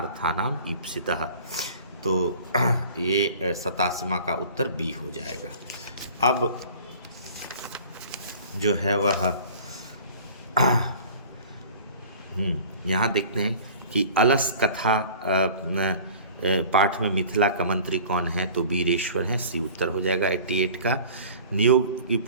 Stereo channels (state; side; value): inverted; both; correlation -0.45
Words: ईप्सितः। तो ये 87वां का उत्तर बी हो जाएगा। अब जो है वह यहाँ देखते हैं कि अलस कथा पाठ में मिथिला का मंत्री कौन है, तो वीरेश्वर है, सी उत्तर हो जाएगा 88 का। नियोग की